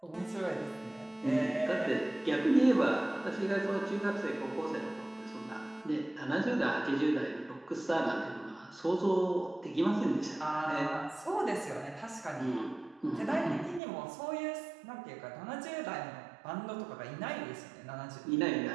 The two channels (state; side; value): drops out; left; at 13.8 s